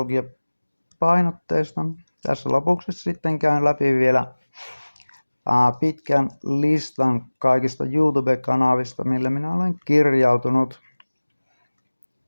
Tässä lopuksi sitten käyn läpi vielä pitkän listan kaikista YouTube-kanavista, mille minä olen kirjautunut.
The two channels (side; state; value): both; inverted; correlation -1.00